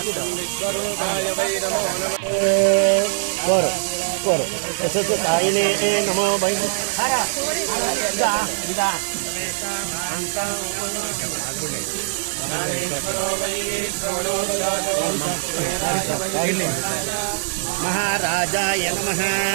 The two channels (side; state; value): left; silent; digital silence